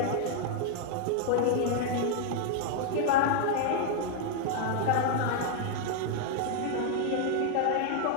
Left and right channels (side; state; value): both; different; correlation 0.00